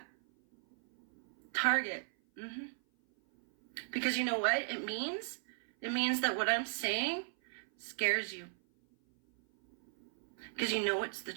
Target. Because you know what it means? It means that what I'm saying scares you. Because you know it's the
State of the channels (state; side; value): silent; left; 54 dB below the other